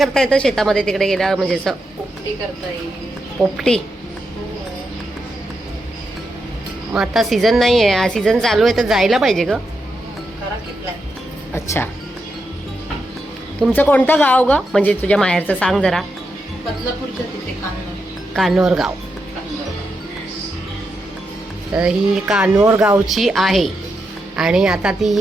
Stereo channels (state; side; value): normal; both; correlation 0.85